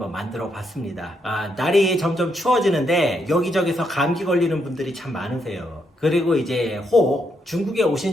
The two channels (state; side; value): normal; both; correlation 0.78